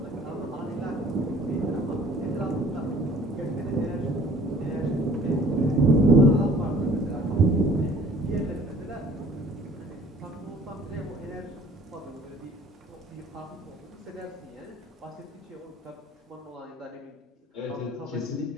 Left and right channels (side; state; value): both; normal; correlation 0.54